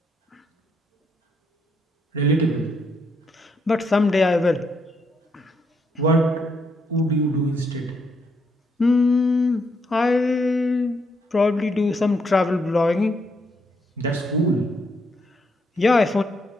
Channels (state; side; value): normal; both; correlation 0.76